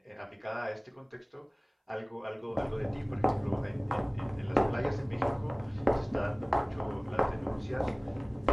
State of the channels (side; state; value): both; identical; correlation 1.00